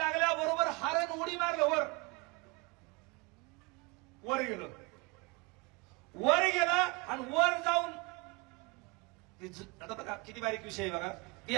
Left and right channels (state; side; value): quieter; left; 27.8 dB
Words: हरण उडी मारलं वर गेलं. वर गेला आणि वर जाऊन आता बघा किती बारीक विषय आहे बघा. हे